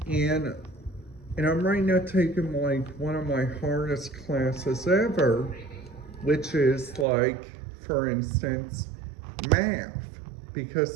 And I'm right now taking like one of my hardest classes ever, which is like, for instance, math.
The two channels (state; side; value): drops out; left; at 7.1 s